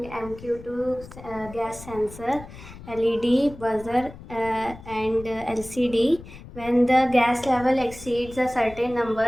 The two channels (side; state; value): left; noise; rumble, 16 dB below the sound